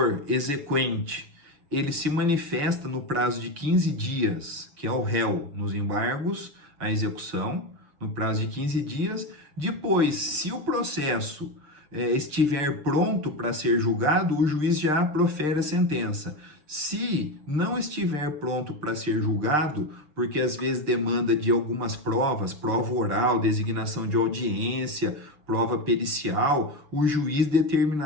exequente, ele se manifesta no prazo de 15 dias, que é o réu nos embargos à execução, no prazo de 15 dias. Depois, se o processo estiver pronto para ser julgado, o juiz já profere a sentença. Se não estiver pronto para ser julgado, porque às vezes demanda de algumas provas, prova oral, designação de audiência, prova pericial, o juiz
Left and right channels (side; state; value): left; late; 6.7 ms